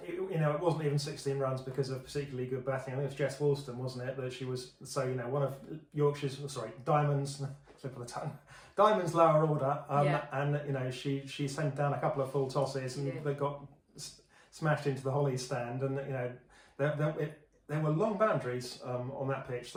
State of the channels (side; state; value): both; identical; correlation 1.00